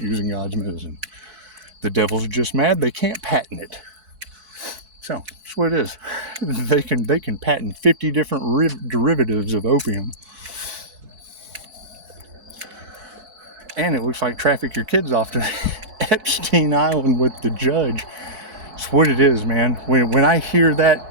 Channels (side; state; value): left; late; 4.6 ms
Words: using God's medicine. The devil's just mad they can't patent it. So, that's what it is. They can patent 50 different derivatives of opium. And it looks like traffic your kids off to Epstein Island with the judge. It's what it is, man. When I hear that